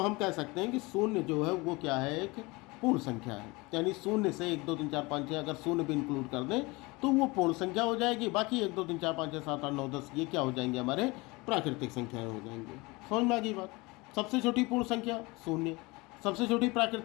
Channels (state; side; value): quieter; right; 24.3 dB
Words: कह सकते हैं कि शून्य जो है वो क्या है? एक पूर्ण संख्या है। यानी शून्य से 1 2 3 4 5 6 अगर शून्य भी इंक्लूड कर दें तो वो पूर्ण संख्या हो जाएगी। बाकी 1 2 3 4 5 6 7 8 9 10 ये क्या हो जाएंगे? हमारे प्राकृतिक संख्याएं हो जाएंगे। समझ में आ गई बात? सबसे छोटी पूर्ण संख्या शून्य, सबसे छोटी